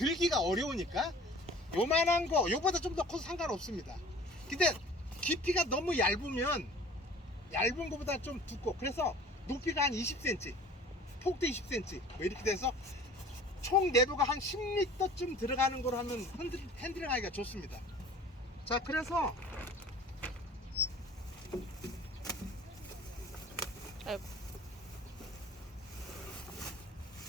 어려우니까 요만한 거, 요보다 좀 더 커도 상관없습니다. 근데 깊이가 너무 얇으면 얇은 거보다 좀 두꺼워. 그래서 높이가 한 20cm, 폭도 20cm 뭐 이렇게 돼서 총 내부가 한 10리터쯤 들어가는 거로 하면 핸들링 하기가 좋습니다. 자, 그래서 아이고.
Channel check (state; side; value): normal; both; correlation 0.46